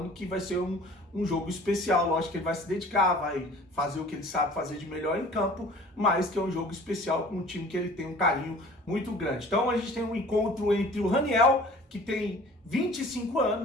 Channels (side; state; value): both; normal; correlation 0.47